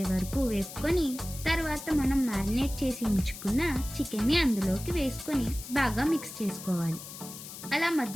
వరకు వేపుకొని తర్వాత మనం మ్యారినేట్ చేసి ఉంచుకున్న చికెన్ని అందులోకి వేసుకొని బాగా మిక్స్ చేసుకోవాలి. అలా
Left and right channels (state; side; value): noise; left; hiss, 12 dB below the sound